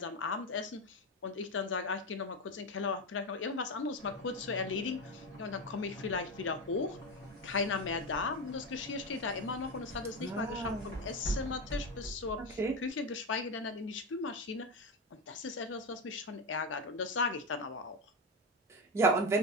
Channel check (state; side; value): normal; both; correlation 0.15